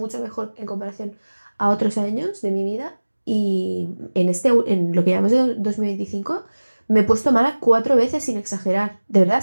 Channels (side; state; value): both; inverted; correlation -1.00